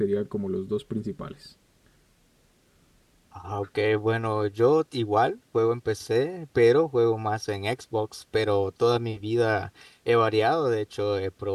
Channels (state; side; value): identical; both; correlation 1.00